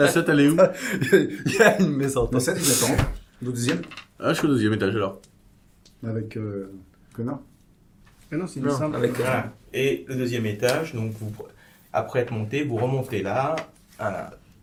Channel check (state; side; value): identical; both; correlation 1.00